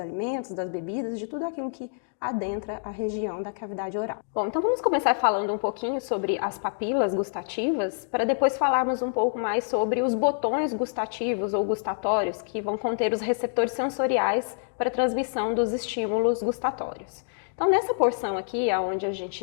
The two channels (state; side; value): silent; right; digital silence